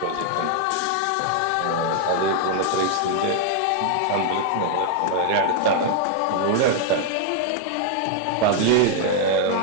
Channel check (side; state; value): both; different; correlation 0.00